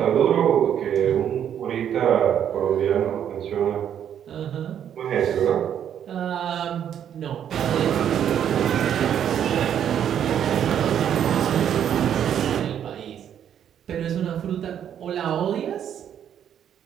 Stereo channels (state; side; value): quieter; left; 9.4 dB